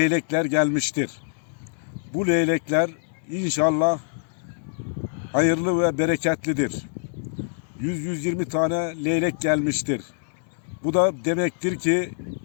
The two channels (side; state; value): right; silent; digital silence